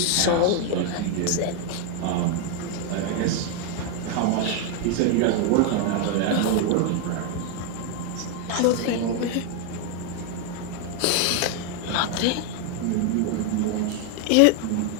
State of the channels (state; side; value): different; both; correlation 0.01